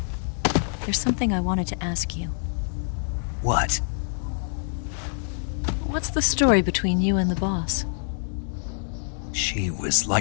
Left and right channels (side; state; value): right; silent; digital silence